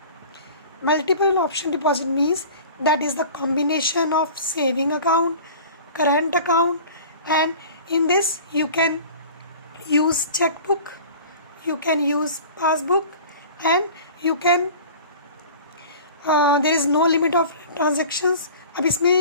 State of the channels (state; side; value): inverted; both; correlation -0.41